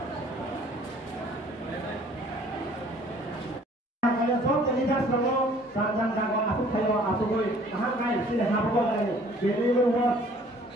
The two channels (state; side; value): normal; both; correlation 0.55